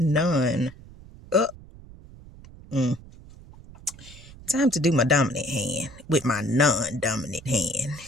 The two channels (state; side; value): noise; right; rumble, 19 dB below the sound